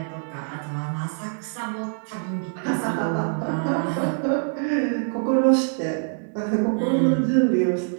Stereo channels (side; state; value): left; silent; 62 dB below the other